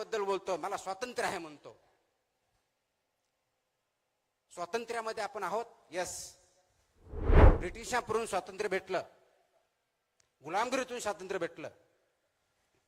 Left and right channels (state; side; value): identical; both; correlation 1.00